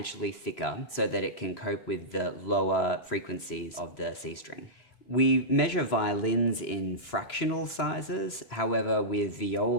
thicker so that it can cope with the lower frequencies of the C string. We measure violins in fractional sizes, however with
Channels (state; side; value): late; right; 3.0 ms